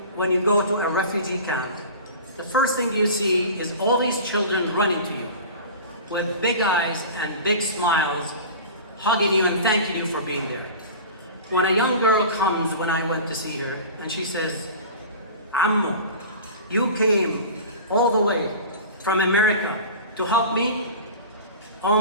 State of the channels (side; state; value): both; inverted; correlation -0.36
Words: when you go to a refugee camp, the first thing you see is all these children running to you with big eyes and big smiles, hugging you and thanking you for being there. When a young girl comes, when I went to see her, and she says, Ammo, you came all the way from America to help me? Oh